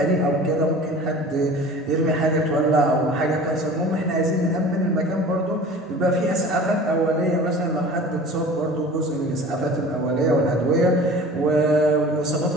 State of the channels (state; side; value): normal; both; correlation 0.42